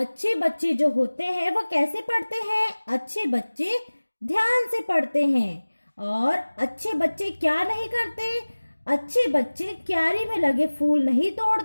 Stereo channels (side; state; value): both; inverted; correlation -1.00